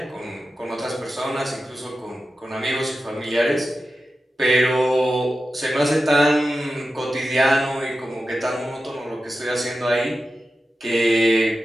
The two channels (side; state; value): both; normal; correlation 0.92